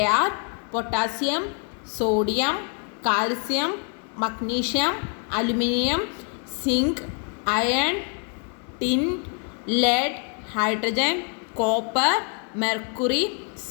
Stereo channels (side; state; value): right; quieter; 37.7 dB